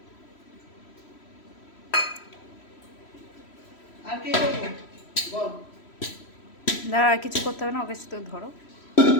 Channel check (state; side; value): late; right; 3.1 ms